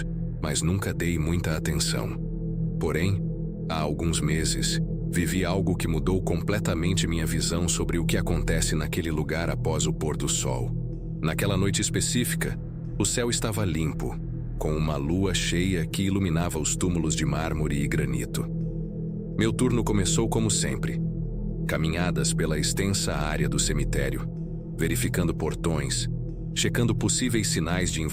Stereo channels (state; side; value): identical; both; correlation 1.00